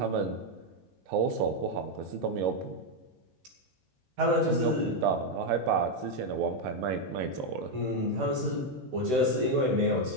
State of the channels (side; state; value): left; late; 16 ms